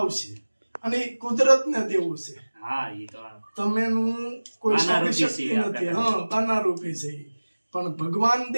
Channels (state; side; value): inverted; both; correlation -1.00